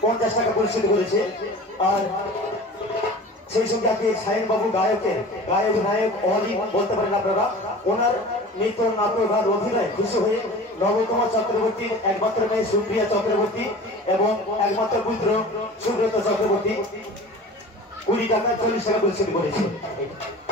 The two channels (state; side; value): normal; both; correlation 0.39